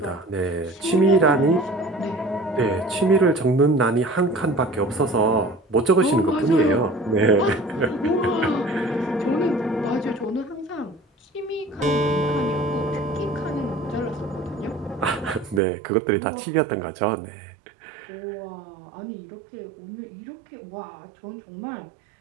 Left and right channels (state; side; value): drops out; left; at 15.6 s